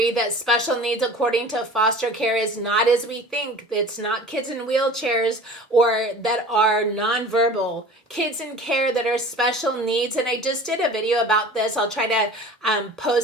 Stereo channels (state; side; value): normal; both; correlation 0.41